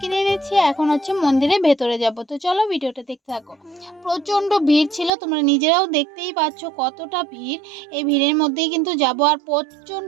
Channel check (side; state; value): left; drops out; at 5.1 s